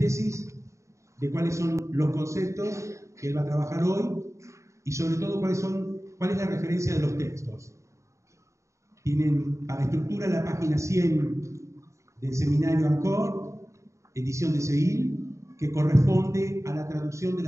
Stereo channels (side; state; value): left; late; 0.14 ms